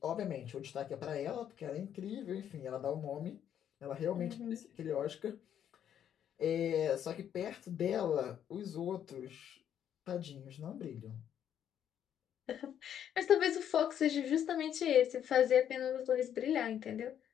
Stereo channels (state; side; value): quieter; right; 9.6 dB